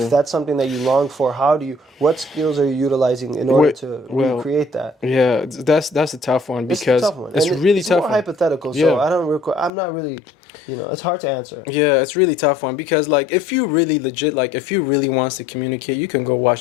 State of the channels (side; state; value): right; drops out; at 9.7 s